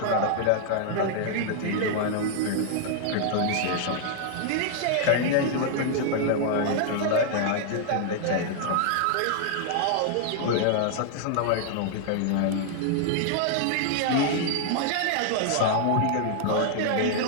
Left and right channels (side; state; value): both; different; correlation -0.01